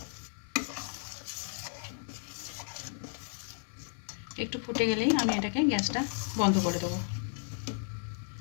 একটু ফুটে গেলেই আমি এটাকে গ্যাসটা বন্ধ করে দেবো।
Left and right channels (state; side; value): silent; right; 55 dB below the other